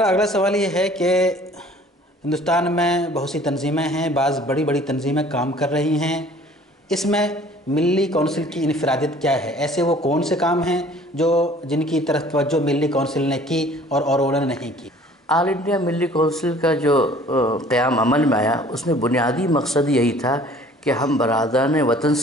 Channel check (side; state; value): both; normal; correlation 0.52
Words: اگلا سوال یہ ہے کہ ہندوستان میں بہت سی تنظیمیں ہیں، بعض بڑی بڑی تنظیمیں کام کر رہی ہیں، اس میں ملی کونسل کی انفرادیت کیا ہے؟ ایسے وہ کون سے کام ہیں جن کی طرف توجہ ملی کونسل نے کی اور انہوں نے نہیں کی؟ آل انڈیا ملی کونسل کا جو قیام عمل میں آیا، اس میں بنیادی مقصد یہی تھا کہ ہم برادران وطن